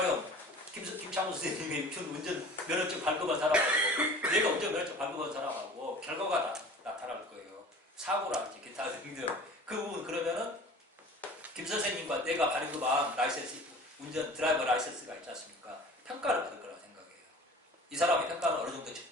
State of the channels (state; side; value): normal; both; correlation 0.43